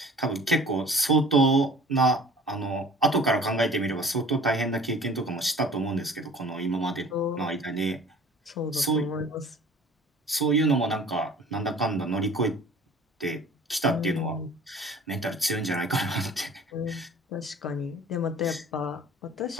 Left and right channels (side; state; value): both; normal; correlation 0.47